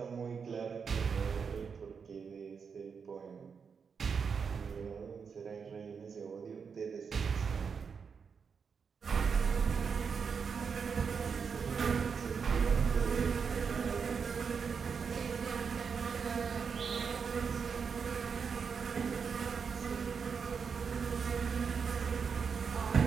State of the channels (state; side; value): quieter; left; 6.0 dB